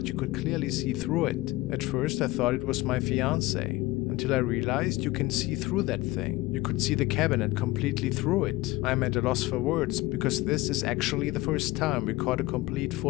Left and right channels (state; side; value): quieter; right; 19.6 dB